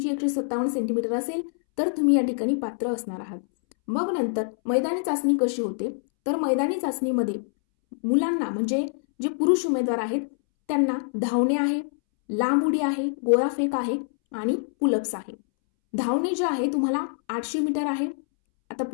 157 सेंटीमीटर असेल तर तुम्ही या ठिकाणी पात्र असणार आहात. मग नंतर मैदानी चाचणी कशी होते तर मैदानी चाचणीमध्ये मुलांना, म्हणजे जे पुरुष उमेदवार आहेत त्यांना धावणे आहे, लांब उडी आहे, गोळाफेक आहे आणि पुलअप्स आहे. धावणे जे आहे तुम्हाला 800 मीटर आहे. आता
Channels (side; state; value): right; silent; 62 dB below the other